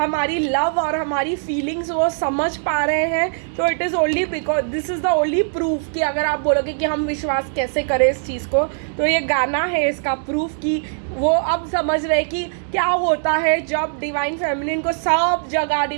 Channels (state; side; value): silent; left; digital silence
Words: लव और हमारी फीलिंग्स वो समझ पा रहे हैं। तो it is only because this is the only proof कि अगर आप बोलोगे कि हम विश्वास कैसे करें इस चीज़ को, तो ये गाना है इसका प्रूफ कि वो अब समझ रहे कि क्या होता है जब डिवाइन फेमिनिन को सब जगह